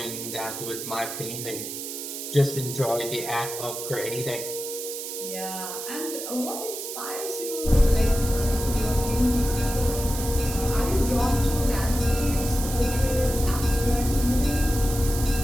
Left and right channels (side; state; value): right; noise; hiss, 7 dB below the sound